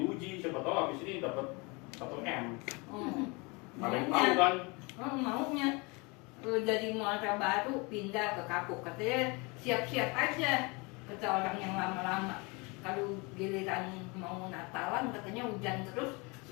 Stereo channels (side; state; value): right; quieter; 28.0 dB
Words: siapa tahu habis ini dapat 1 M. Ada yang tahu Maunya, kan? maunya dari Muara Baru pindah ke Kapuk, katanya siap-siap aja, kata orang yang lama-lama. Kalau giliran mau Natalan katanya hujan terus,